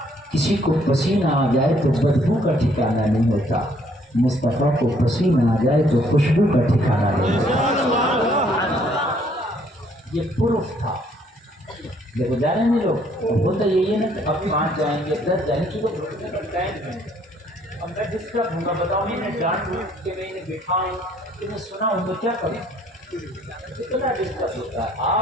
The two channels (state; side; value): normal; both; correlation 0.64